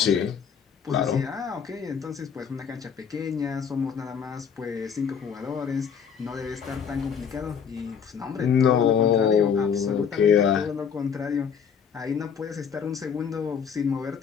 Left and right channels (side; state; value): right; quieter; 7.1 dB